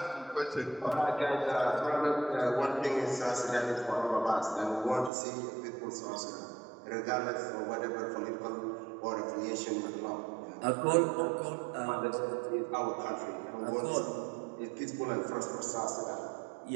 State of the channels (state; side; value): drops out; left; at 5.1 s